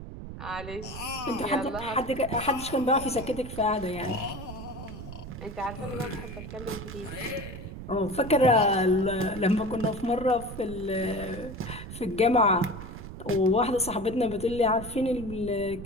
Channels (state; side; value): noise; right; rumble, 11 dB below the sound